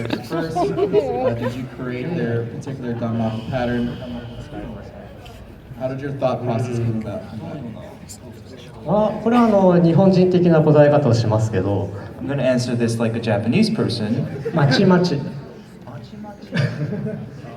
first? Did you create their particular Danmaku pattern? How did your thought process come about? これは日本人的な答え方をしますけど、 I'm going to answer this like a Japanese person. まちまち。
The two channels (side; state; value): both; identical; correlation 1.00